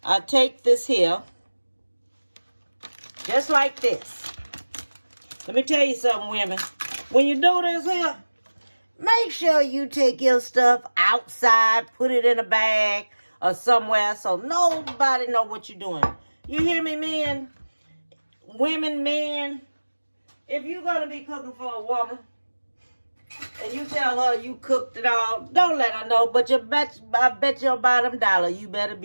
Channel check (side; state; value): both; inverted; correlation -1.00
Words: I take this here, just like this. Let me tell you something, women. When you do this here, make sure you take your stuff outside, put it in a bag or somewhere so nobody know what you're doing. You hear me, men? Women, men, if you're going to be cooking for a woman and you tell her you cooked it all, don't let her know. But I bet your bottom dollar you better